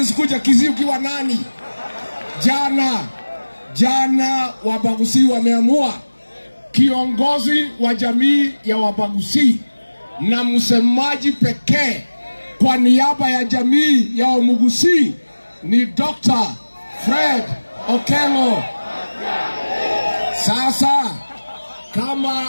Kisii ukiwa nani? Jana Wabaguzi wameamua, kiongozi wa jamii ya Wabaguzi na msemaji pekee kwa niaba ya jamii ya Wamuguzi ni Dr. Fred Okello. Sasa kama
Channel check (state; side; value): inverted; both; correlation -1.00